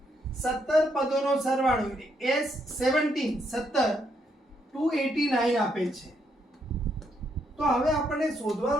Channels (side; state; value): both; normal; correlation 0.76